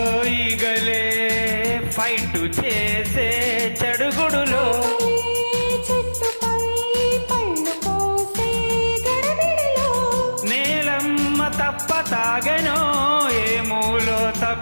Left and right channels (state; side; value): inverted; both; correlation -1.00